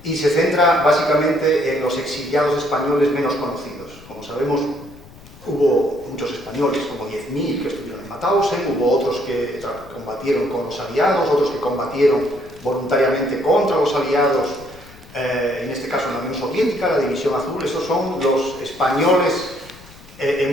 Y se centra básicamente en los exiliados españoles menos conocidos. Como sabemos, hubo muchos españoles, como 10.000 que estuvieron en Mauthausen, hubo otros que combatieron con los aliados, otros que combatieron voluntariamente contra los aliados, en este caso en la Unión Soviética, la División Azul. Estos son los españoles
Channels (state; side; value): noise; left; rumble, 21 dB below the sound